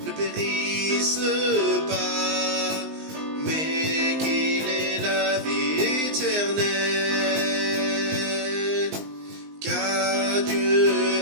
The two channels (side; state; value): left; late; 19 ms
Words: ne périsse pas, mais qu'il ait la vie éternelle. Car Dieu